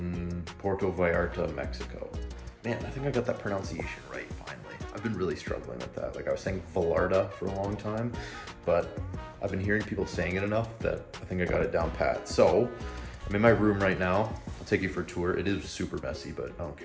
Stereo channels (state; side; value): identical; both; correlation 1.00